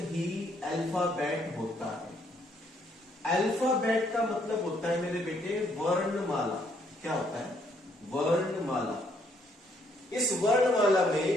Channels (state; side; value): normal; both; correlation 0.69